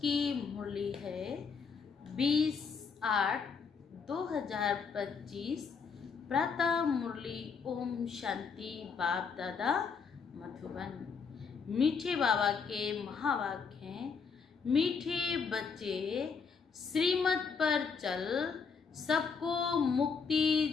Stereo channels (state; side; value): quieter; right; 5.6 dB